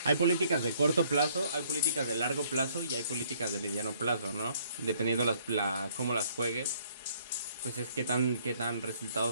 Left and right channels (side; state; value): both; inverted; correlation -0.64